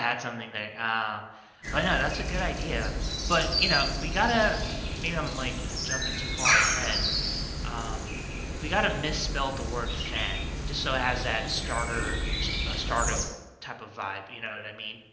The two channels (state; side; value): identical; both; correlation 1.00